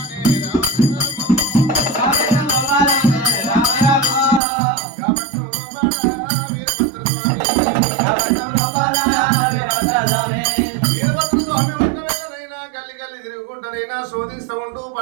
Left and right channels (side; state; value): left; drops out; at 4.4 s